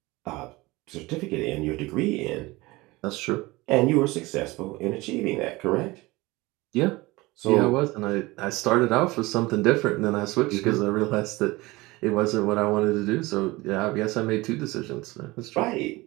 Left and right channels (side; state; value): left; quieter; 21.4 dB